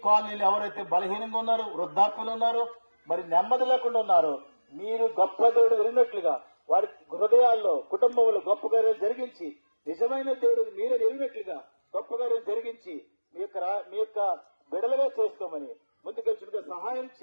కాలనీలు ఎవరైతే బలహీనంగా ఉన్నారో, వృద్ధాప్యులు ఉన్నారో, మరి నెమ్మది లేకుండా ఉన్నారో మీరు గొప్ప దేవుడు ఎరిగినట్లుగా వారి హృదయాల్లో, కుటుంబంలో గొప్ప కార్యాలు జరిగించి నిజమైన దేవుడు మీరే ఎరిగినట్లుగా గొప్ప కార్యం జరిగించి మీ యొక్క బిడలుగా చేసుకోమని ముందుకెచ్చుగా సహాయం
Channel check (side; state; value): both; inverted; correlation -1.00